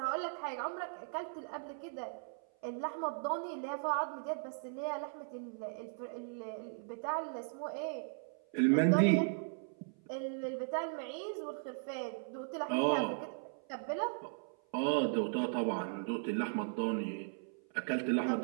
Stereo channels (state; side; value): silent; left; 53 dB below the other